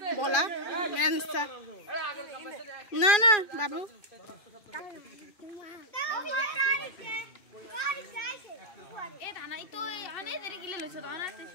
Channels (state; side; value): late; right; 2.4 ms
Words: বলা না না বাবু